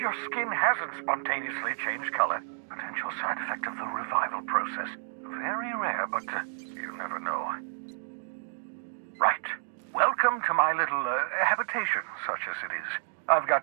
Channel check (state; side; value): silent; left; digital silence